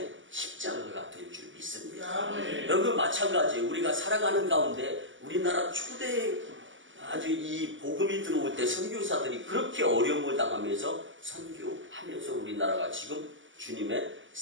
십자가가 될 줄 믿습니다. 여러분 마찬가지, 우리가 살아가는 가운데 우리나라 초대 아주 이 복음이 들어올 때 선교사들이 그렇게 어려움을 당하면서 선교하면서 우리나라가 지금 주님의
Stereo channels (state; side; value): late; left; 0.56 ms